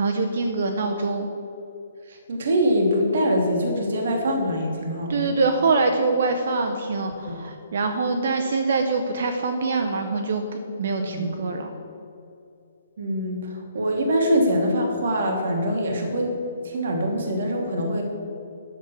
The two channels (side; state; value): both; inverted; correlation -0.66